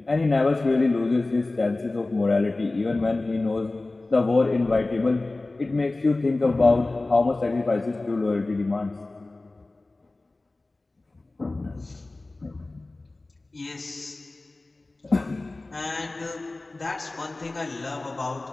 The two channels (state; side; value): quieter; right; 3.1 dB